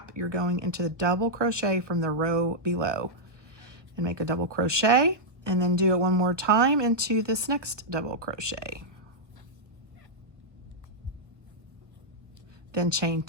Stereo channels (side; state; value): left; late; 1.3 ms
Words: you're going into the double crochet from the row below. And make a double crochet, and then do it one more time into this next double crochet. Then chain